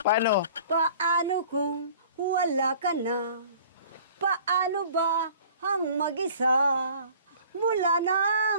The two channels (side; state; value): both; inverted; correlation -0.48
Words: Paano kung wala ka na? Paano ba ang mag-isa? Mula